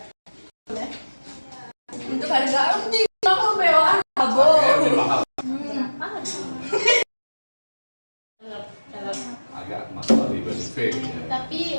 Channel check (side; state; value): both; inverted; correlation -1.00